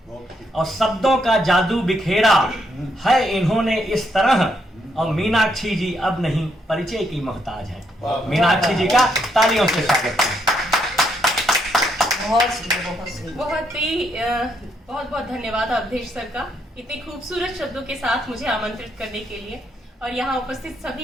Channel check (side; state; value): both; normal; correlation 0.75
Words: और शब्दों का जादू बिखेरा है इन्होंने इस तरह। और मीनाक्षी जी अब नहीं परिचय की मोहताज है। मीनाक्षी जी का तालियों से स्वागत है। बहुत बहुत धन्यवाद अवधेश सर का, इतने खूबसूरत शब्दों के साथ मुझे आमंत्रित करने के लिए। और यहाँ उपस्थित